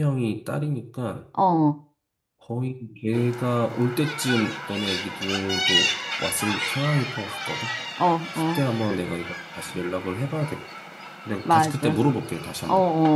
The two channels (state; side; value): identical; both; correlation 1.00